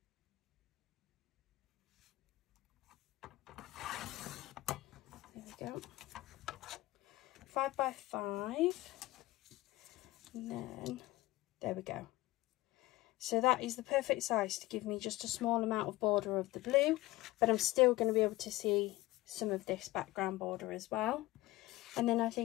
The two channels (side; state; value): right; quieter; 18.2 dB